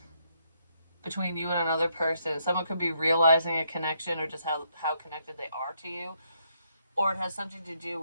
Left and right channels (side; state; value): both; inverted; correlation -0.74